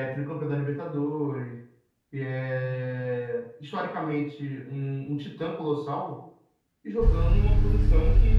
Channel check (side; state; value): both; identical; correlation 1.00